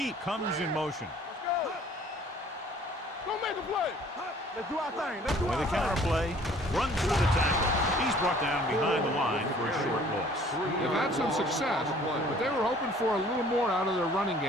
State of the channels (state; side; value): normal; both; correlation 0.54